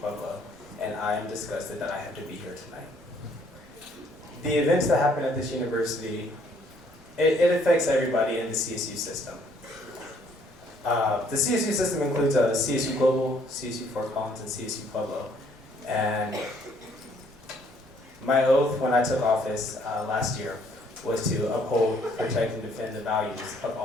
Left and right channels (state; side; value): normal; both; correlation 0.64